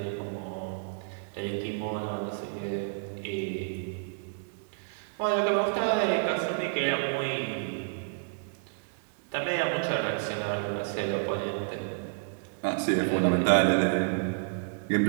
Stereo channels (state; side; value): silent; left; digital silence